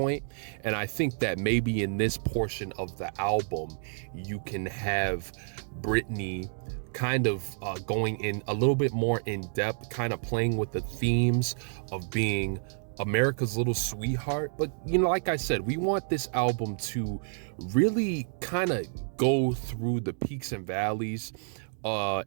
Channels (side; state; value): left; silent; digital silence